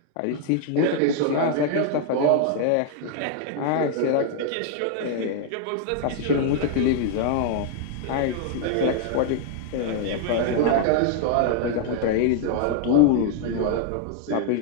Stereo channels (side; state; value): both; different; correlation 0.00